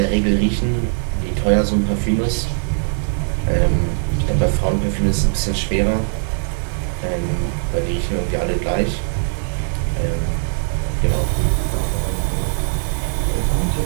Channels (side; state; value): left; silent; digital silence